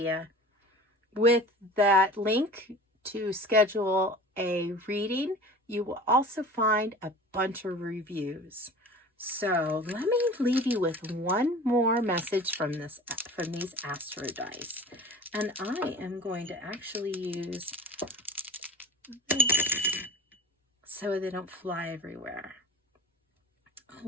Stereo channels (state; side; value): normal; both; correlation 0.39